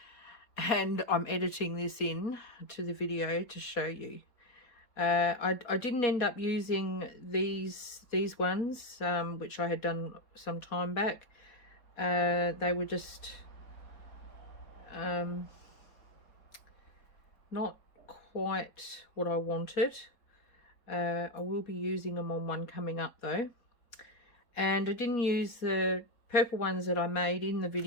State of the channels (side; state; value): right; late; 4.2 ms